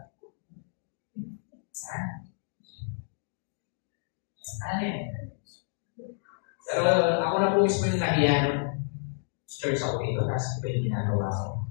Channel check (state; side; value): silent; right; digital silence